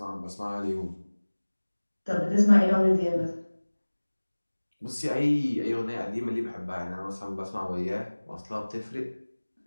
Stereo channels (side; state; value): both; inverted; correlation -1.00